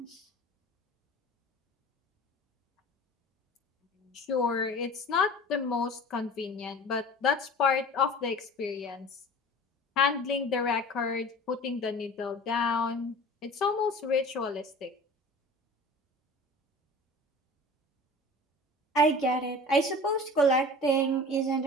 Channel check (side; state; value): both; normal; correlation 0.40